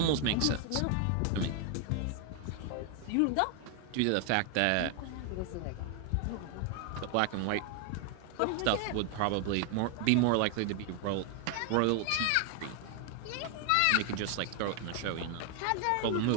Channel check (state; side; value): different; both; correlation 0.00